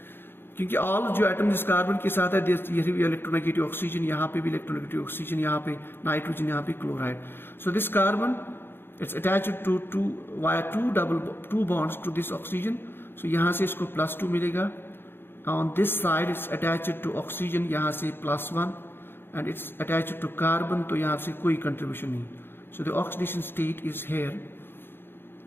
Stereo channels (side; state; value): right; late; 0.10 ms